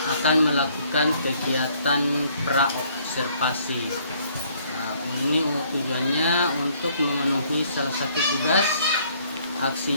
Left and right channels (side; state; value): both; inverted; correlation -0.63